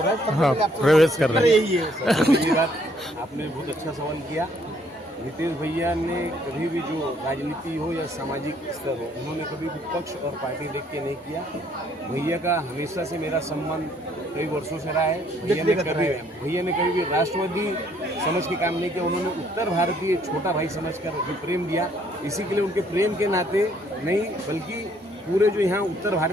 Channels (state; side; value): normal; both; correlation 0.65